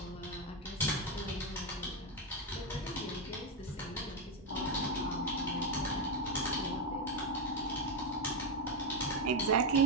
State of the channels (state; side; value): normal; both; correlation 0.07